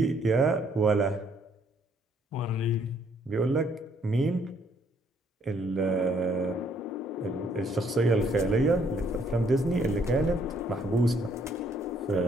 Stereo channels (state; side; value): normal; both; correlation 0.67